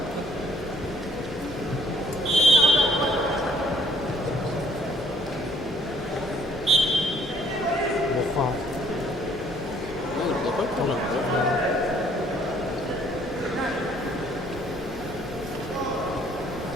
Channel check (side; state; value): both; normal; correlation 0.62